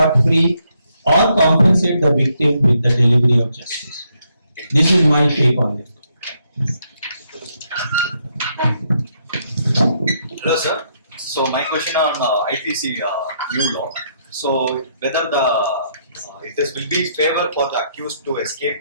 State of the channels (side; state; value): both; inverted; correlation -0.75